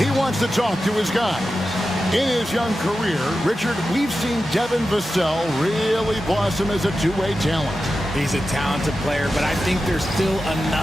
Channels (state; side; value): normal; both; correlation 0.92